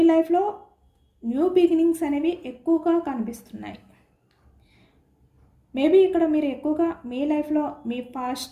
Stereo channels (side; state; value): both; identical; correlation 1.00